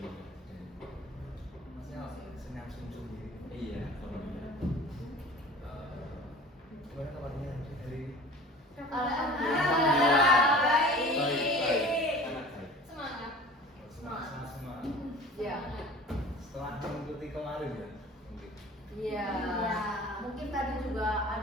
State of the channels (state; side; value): normal; both; correlation 0.43